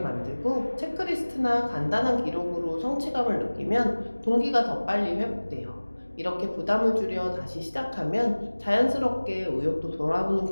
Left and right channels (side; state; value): both; inverted; correlation -1.00